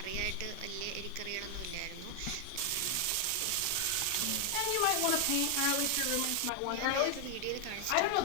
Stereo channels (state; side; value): different; both; correlation 0.00